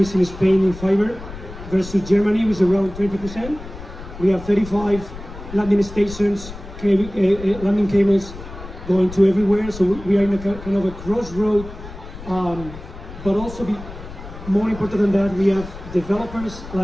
in Spain in fiber versus Germany, which is around 20%. We have 35 landing stations, landing cables going to everywhere. So we are in a kind of a crossroad, but also more important than that, we have developers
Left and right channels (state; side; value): noise; left; rumble, 13 dB below the sound